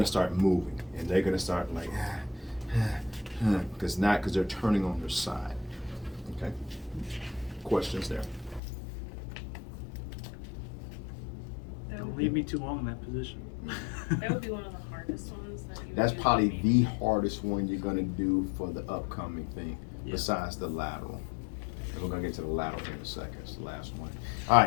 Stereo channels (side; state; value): right; drops out; at 8.6 s